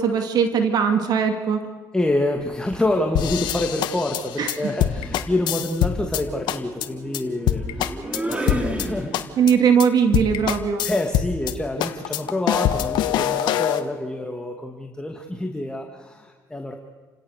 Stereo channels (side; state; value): both; normal; correlation 0.58